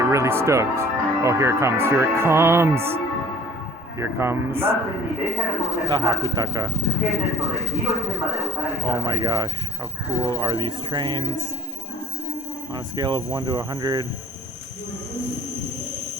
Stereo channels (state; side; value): normal; both; correlation 0.49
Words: really stoked. Oh, here it comes! Here it comes! Here comes the Hakutaka. Oh my gosh, how cool are these trains? On a scale of 1 to 100,